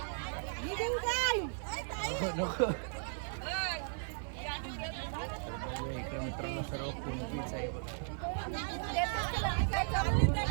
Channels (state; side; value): silent; left; 54 dB below the other